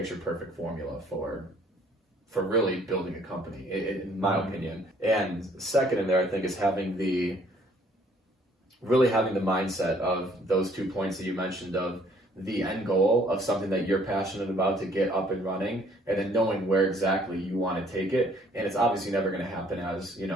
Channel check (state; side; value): normal; both; correlation 0.61